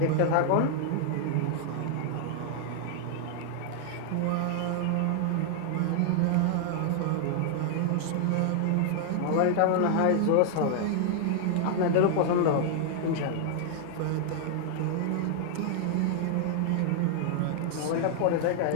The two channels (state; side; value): different; both; correlation 0.00